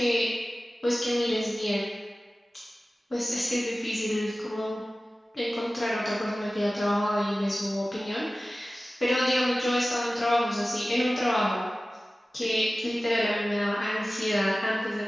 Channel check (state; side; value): normal; both; correlation 0.96